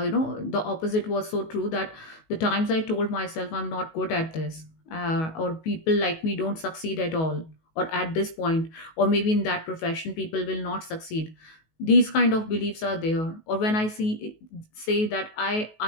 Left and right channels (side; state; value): right; late; 19 ms